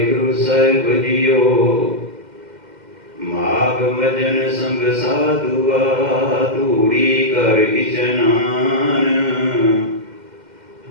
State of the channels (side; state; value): left; late; 2.1 ms